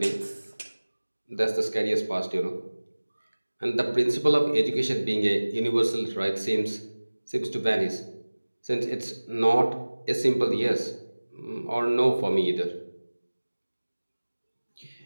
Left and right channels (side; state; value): both; inverted; correlation -1.00